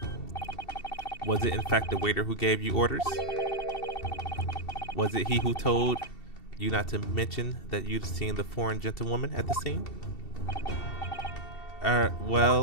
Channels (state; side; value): late; right; 2.7 ms